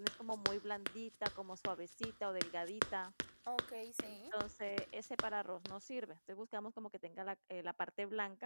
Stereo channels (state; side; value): inverted; both; correlation -1.00